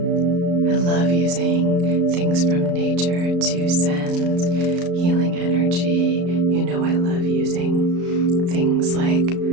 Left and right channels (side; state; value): left; late; 34 ms